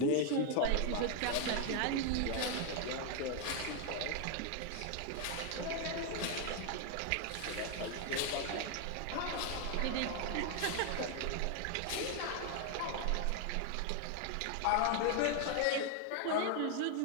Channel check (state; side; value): different; both; correlation 0.00